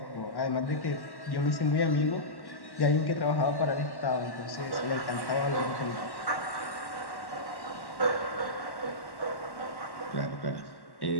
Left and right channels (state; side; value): late; right; 1.1 ms